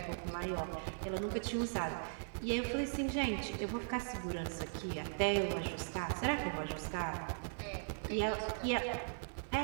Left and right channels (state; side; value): silent; left; 52 dB below the other